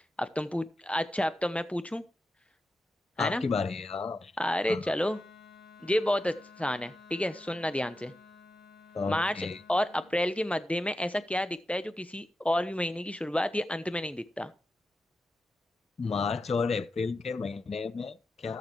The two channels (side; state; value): both; normal; correlation 0.89